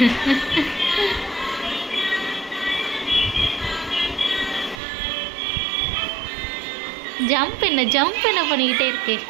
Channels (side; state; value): left; drops out; at 4.8 s